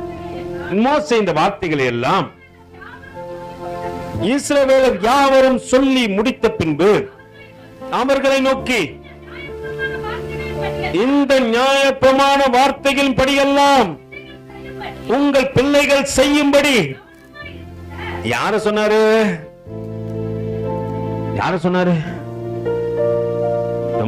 மோசே இந்த வார்த்தைகளை எல்லாம் இஸ்ரவேலர் யாவரும் சொல்லி முடித்த பின்பு அவர்களை நோக்கி, இந்த நியாயப்பிரமாண வார்த்தைகளின் படியெல்லாம் உங்கள் பிள்ளைகள் செய்யும்படி. யார சொன்னாரு?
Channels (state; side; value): identical; both; correlation 1.00